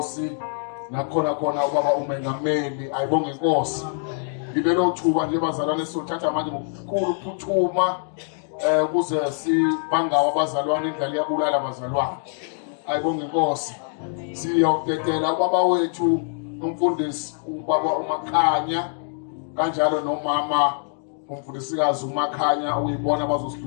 nakhona khona ubaba umengameli. Ayibonge Inkosi. Ngibelo thuba nje bazalwane sothatha manje ngokukhulu ukuphuthuma kuze sibangawa abazalwane indlela yabulala abazalwane. Ayibonge Inkosi. Siyokudedela ubaba wethu umfundisi ubaba uMakhanya kanjalo nomama umfundisikazi uMakhanya uyibona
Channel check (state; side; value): silent; right; 60 dB below the other